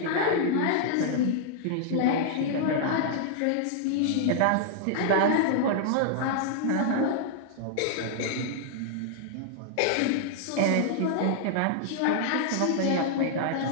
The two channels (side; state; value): both; different; correlation -0.01